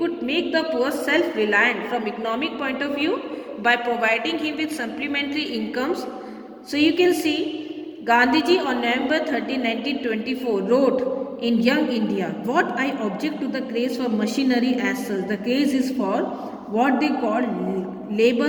make the poor self-reliant from economic point of view by providing him with supplementary incomes. So you can see Gandhiji on November 13, 1924 wrote in Young India, what I object to the craze for machinery as such, the craze is for what they call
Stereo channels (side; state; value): both; identical; correlation 1.00